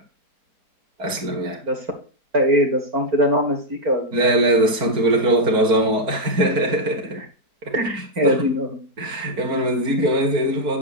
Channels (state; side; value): late; left; 4.6 ms